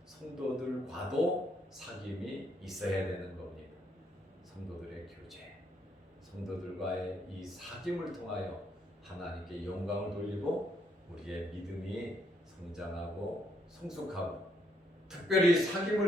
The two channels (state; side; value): normal; both; correlation 0.73